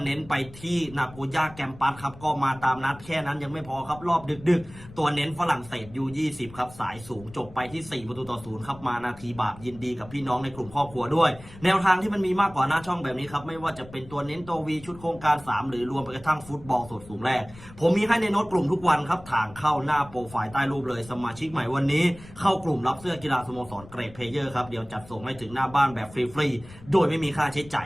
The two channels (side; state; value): left; noise; rumble, 19 dB below the sound